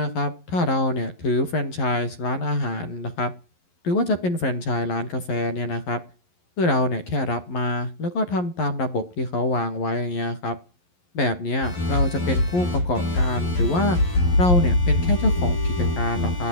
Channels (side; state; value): right; late; 11 ms